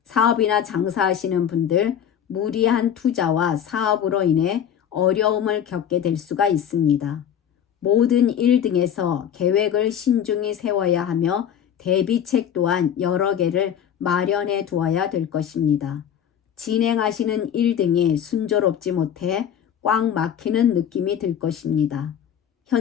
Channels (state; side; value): quieter; right; 9.0 dB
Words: 사업이나 장사하시는 분들 무리한 투자와 사업으로 인해 어려움을 겪게 될 수가 있습니다. 모든 일 등에서 계획을 신중히 세워야 하며 대비책 또한 여러 개를 마련해 두어야 될 것입니다. 진행하시는 일 등이 순조롭지 못해 꽉 막히는 느낌이 들 것입니다.